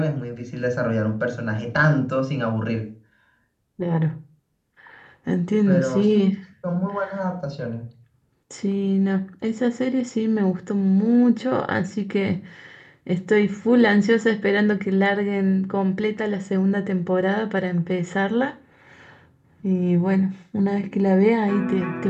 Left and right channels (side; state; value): both; identical; correlation 1.00